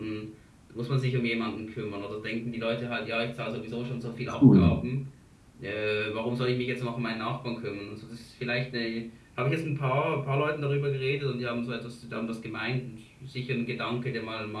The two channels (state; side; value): identical; both; correlation 1.00